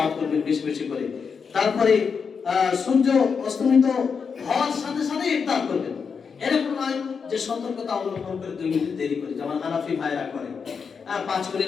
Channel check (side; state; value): right; quieter; 5.9 dB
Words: করবেন বেশি বেশি করে। তারপরে সূর্য অস্তমিত হওয়ার সাথে সাথে ইফতার করবেন। এরকম নয় যে সতর্কতা অবলম্বন করে 2 মিনিট দেরি করে, যেমন হানাফি ভাইরা করে, 5